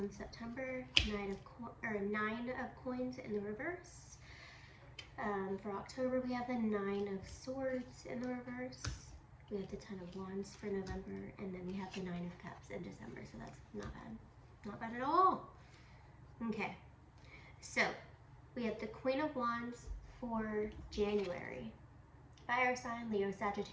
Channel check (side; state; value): both; identical; correlation 1.00